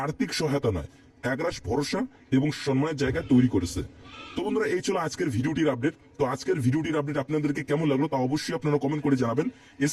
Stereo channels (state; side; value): identical; both; correlation 1.00